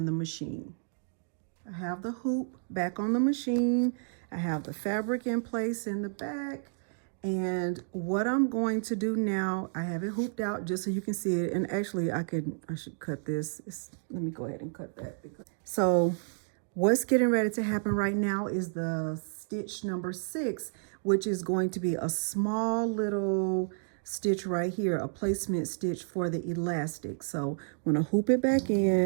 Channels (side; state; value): left; silent; digital silence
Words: the machine. I have the hoop back on the machine. I have the fabric in place in the back. And what I'm going to do now, I have it hooped out just so you can see it. And actually I should cut this. Let me go ahead and cut that. So what's getting ready to happen right now is the stitch number 6, which is going to be a small little stitch right here, a placement stitch for the elastic. So I'm gonna hoop it back